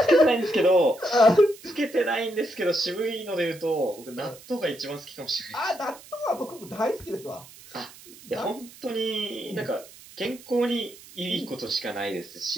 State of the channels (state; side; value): noise; right; hiss, 20 dB below the sound